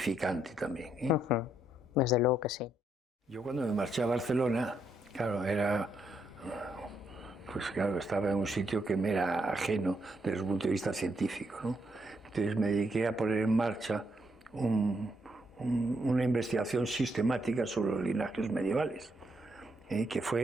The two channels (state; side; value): normal; both; correlation 0.77